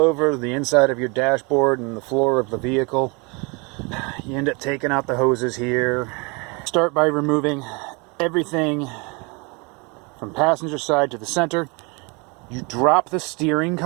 the inside of your dashboard and the floor of the vehicle, you end up taking out the hoses here. Start by removing everything from passenger side to the center. You drop the steering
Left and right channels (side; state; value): left; quieter; 29.7 dB